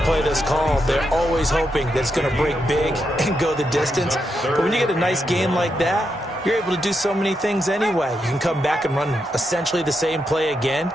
play that's called, they're always hoping that it's going to break big and go the distance. But when you get a nice game like that, you're able to do so many things anyway. You can come back and run essentially the same play again,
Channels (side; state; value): both; normal; correlation 0.83